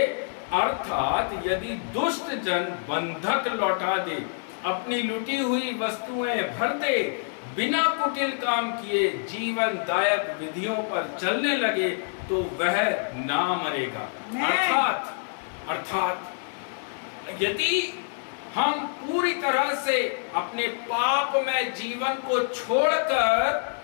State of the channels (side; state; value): right; silent; digital silence